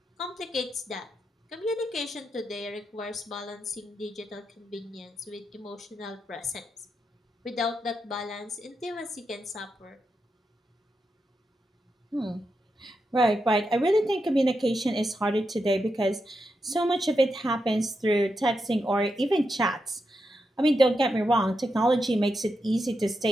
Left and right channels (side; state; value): both; normal; correlation 0.86